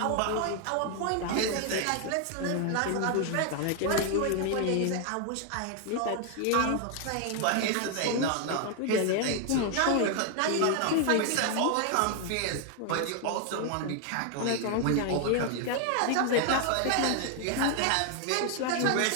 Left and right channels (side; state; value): both; different; correlation 0.00